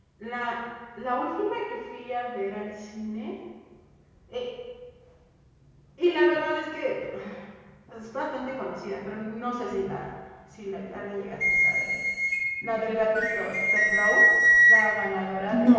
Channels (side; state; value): both; identical; correlation 1.00